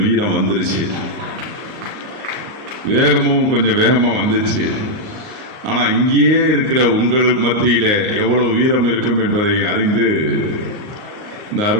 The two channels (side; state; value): left; late; 38 ms